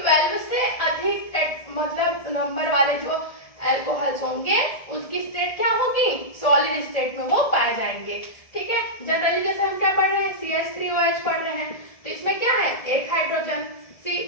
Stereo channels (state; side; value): late; right; 1.7 ms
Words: से अधिक मतलब नंबर वाले जो अल्कोहल्स होंगे उसकी स्टेट क्या होगी, सॉलिड स्टेट में वो पाए जाएंगे, ठीक है। जनरली जैसे हम क्या पढ़ रहे हैं, CH3OH पढ़ रहे हैं, तो इसमें क्या है, एक हाइड्रोजन,